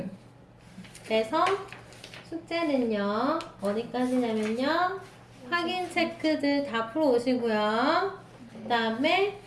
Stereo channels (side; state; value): both; identical; correlation 1.00